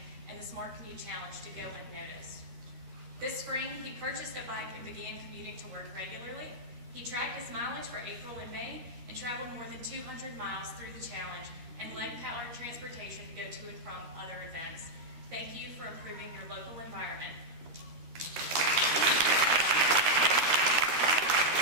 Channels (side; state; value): left; late; 13 ms